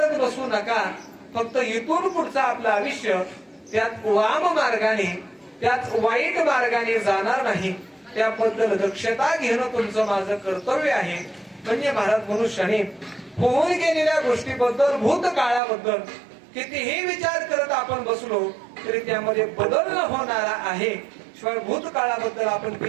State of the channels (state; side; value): drops out; left; at 15.6 s